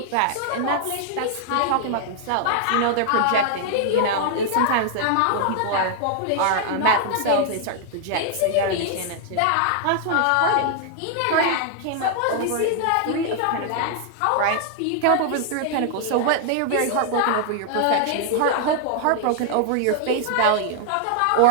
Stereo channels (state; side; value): different; both; correlation 0.00